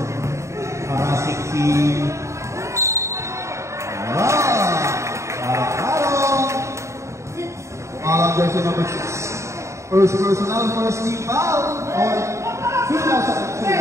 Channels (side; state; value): left; late; 0.14 ms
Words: parasik si jersey number 6. First personal, first team foul on